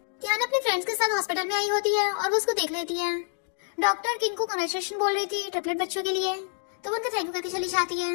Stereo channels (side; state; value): right; silent; 60 dB below the other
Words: टियाना अपने फ्रेंड्स के साथ हॉस्पिटल में आई होती है और वो उसको देख लेती है। डॉक्टर किंग को कांग्रेचुलेशन बोल रही थी ट्रिपलेट बच्चों के लिए, तो वो उनका थैंक यू करके चली जाती है।